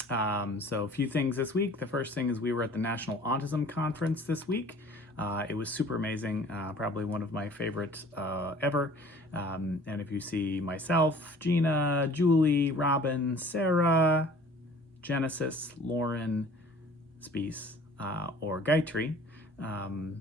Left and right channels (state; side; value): normal; both; correlation 0.49